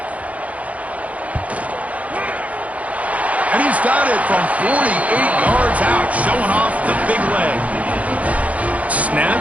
And he's got it from 48 yards out, showing off the big leg. Snap,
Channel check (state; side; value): late; left; 0.068 ms